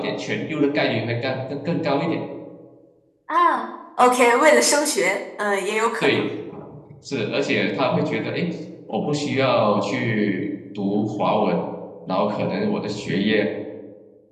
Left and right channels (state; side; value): identical; both; correlation 1.00